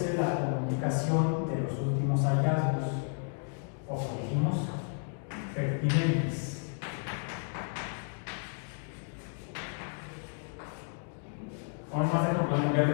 la comunicación de los últimos hallazgos, o como dijimos, pertinentes. Vamos a hacer como un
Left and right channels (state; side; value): silent; right; 55 dB below the other